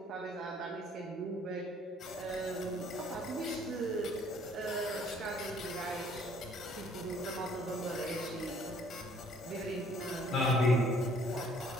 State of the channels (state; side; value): normal; both; correlation 0.60